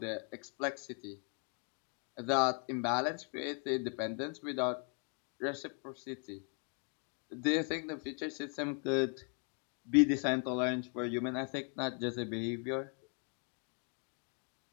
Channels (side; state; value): right; quieter; 39.7 dB